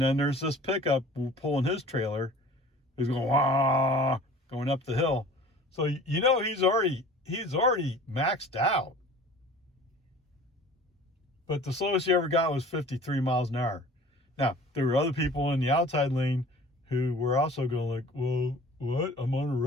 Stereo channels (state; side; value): normal; both; correlation 0.45